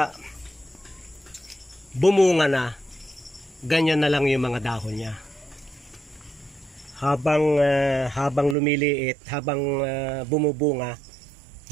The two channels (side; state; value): left; drops out; at 8.6 s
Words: bumunga na, ganyan na lang yung mga dahon niya. Habang lumiliit, habang bumubunga,